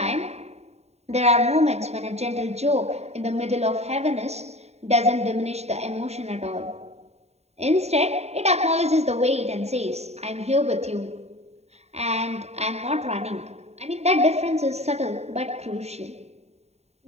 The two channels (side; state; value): left; late; 0.31 ms